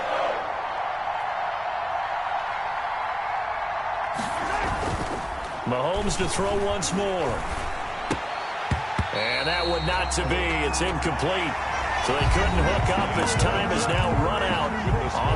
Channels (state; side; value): identical; both; correlation 1.00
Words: Mahomes to throw once more. And that one not to be. It's incomplete. So they couldn't hook up as time is now run out